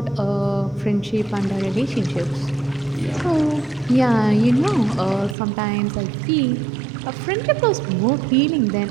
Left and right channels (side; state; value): left; drops out; at 5.4 s